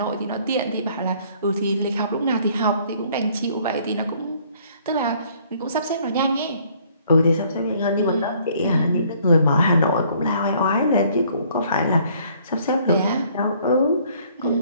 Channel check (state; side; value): inverted; both; correlation -0.61